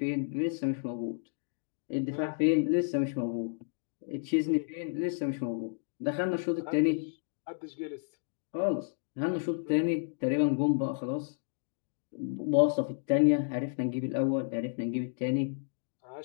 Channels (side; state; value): right; silent; digital silence